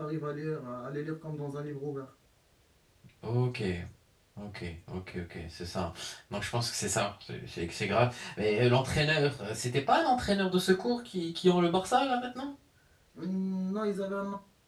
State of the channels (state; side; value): identical; both; correlation 1.00